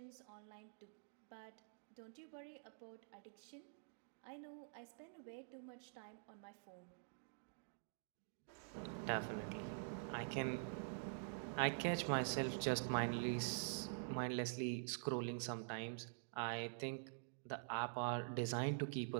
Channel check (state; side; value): silent; left; digital silence